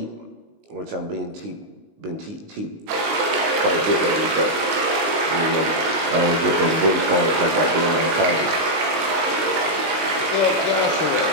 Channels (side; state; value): left; late; 19 ms